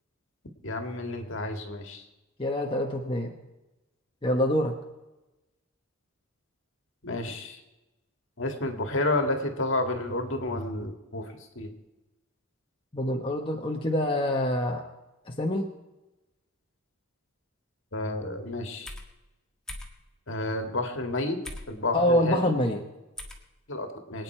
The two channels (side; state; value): both; normal; correlation 0.23